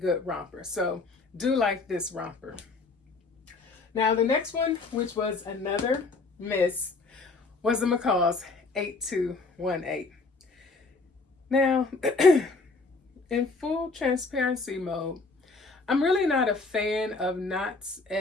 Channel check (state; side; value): quieter; right; 3.7 dB